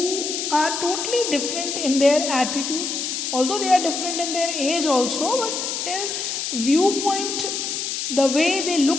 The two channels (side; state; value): left; noise; hiss, 3 dB below the sound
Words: are totally different in their attitude, although they are different in their age also, but their viewpoint, the way they